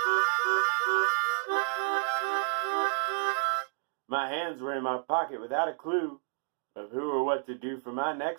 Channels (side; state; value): left; silent; digital silence